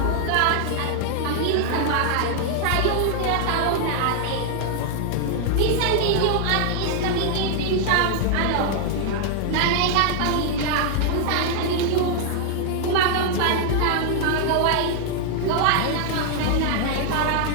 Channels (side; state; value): both; different; correlation 0.00